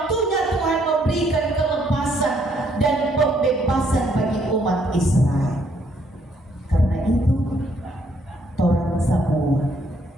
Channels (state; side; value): normal; both; correlation 0.69